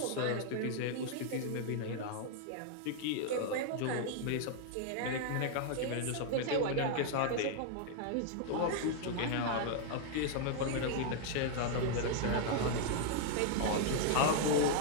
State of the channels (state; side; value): different; both; correlation 0.00